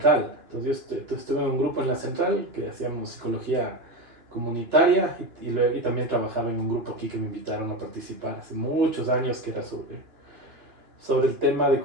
entonces yo estuve en un grupo en la central que hacíamos psicología comunitaria y también trabajaba en un grupo aquí que me invitaron a participar hace muchos años, que era sobre el tema de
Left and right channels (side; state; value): left; late; 2.9 ms